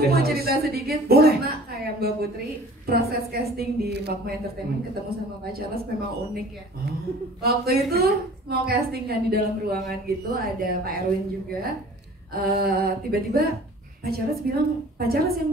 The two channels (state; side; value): normal; both; correlation 0.47